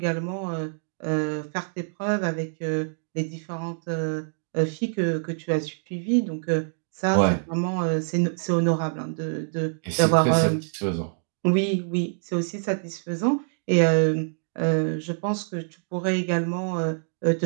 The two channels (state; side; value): silent; left; digital silence